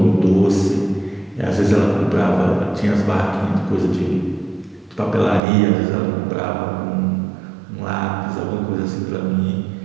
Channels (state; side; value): drops out; left; at 5.4 s